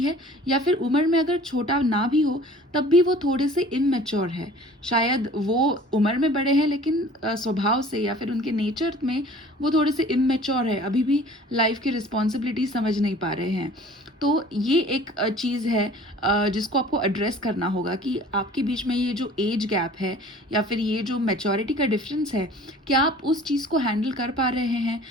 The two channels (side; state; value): both; normal; correlation 0.47